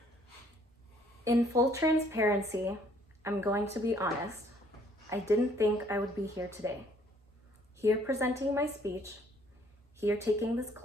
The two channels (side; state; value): both; normal; correlation 0.62